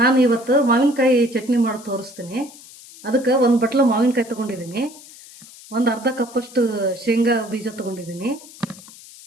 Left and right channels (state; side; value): noise; left; hiss, 20 dB below the sound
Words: ನಾನು ಇವತ್ತು ಮಾವಿನಕಾಯಿ ಚಟ್ನಿ ಮಾಡಿ ತೋರಿಸ್ತೀನಿ. ಅದಕ್ಕೆ ಒಂದು ಬಟ್ಲ ಮಾವಿನಕಾಯಿ ತಗೊಂಡಿದ್ದೀನಿ, ಒಂದು ಅರ್ಧ ಕಪ್ಪಷ್ಟು ಶೇಂಗಾ ಬೀಜ ತಗೊಂಡಿದ್ದೀನಿ,